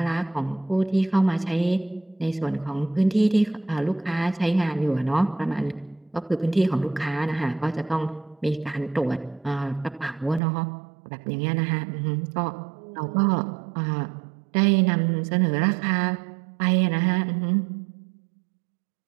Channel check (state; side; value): drops out; left; at 10.4 s